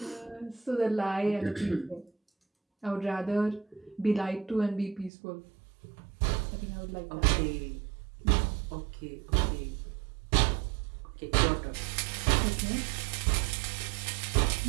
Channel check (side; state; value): left; drops out; at 5.1 s